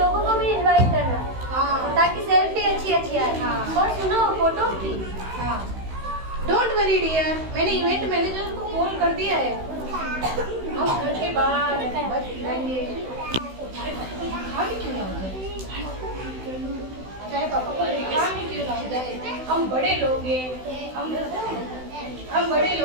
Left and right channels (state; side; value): late; left; 16 ms